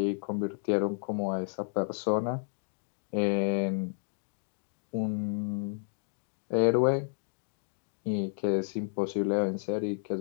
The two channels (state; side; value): silent; right; digital silence